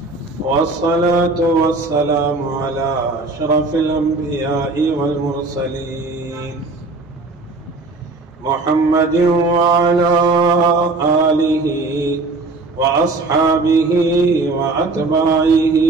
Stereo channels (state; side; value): quieter; left; 3.4 dB